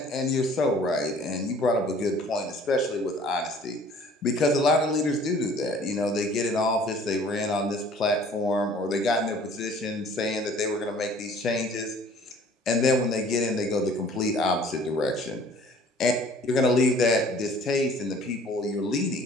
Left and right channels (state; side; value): normal; both; correlation 0.52